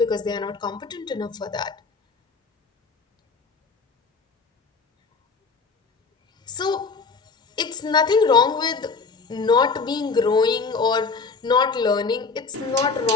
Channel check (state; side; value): quieter; right; 4.6 dB